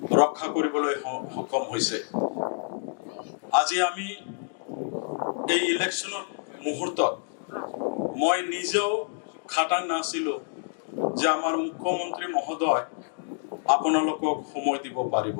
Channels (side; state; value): right; silent; digital silence